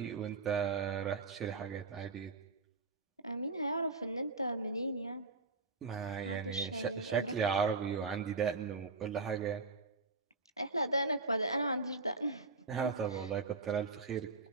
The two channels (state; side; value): quieter; left; 3.9 dB